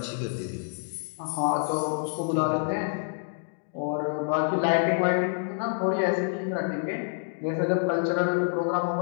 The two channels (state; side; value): silent; right; digital silence